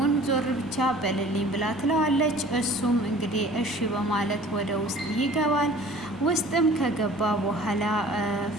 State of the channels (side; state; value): right; noise; rumble, 23 dB below the sound